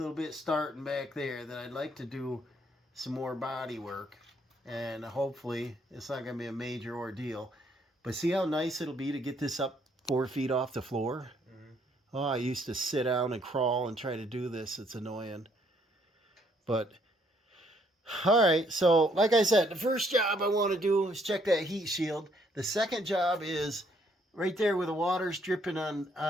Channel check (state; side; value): normal; both; correlation 0.68